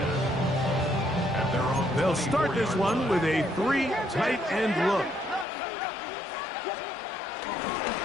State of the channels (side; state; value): right; drops out; at 5.5 s